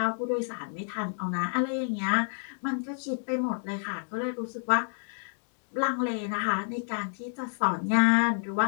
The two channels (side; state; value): right; silent; 58 dB below the other